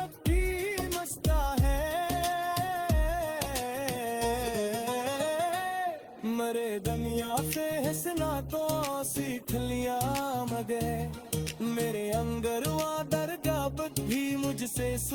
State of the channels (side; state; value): both; identical; correlation 1.00